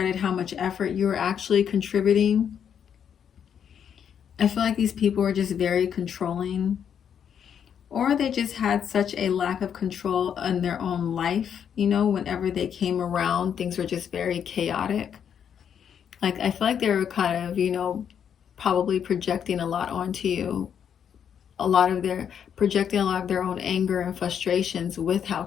how much effort you are actually contributing. I feel like these people were just very controlling, or they just had such a lack of control in their own life. You know, whenever they came around, things were just very chaotic. Like, I feel like they were kind of, you know, probably projecting a lot onto you. Projecting a lot of their own anger and frustrations with how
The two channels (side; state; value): right; quieter; 8.3 dB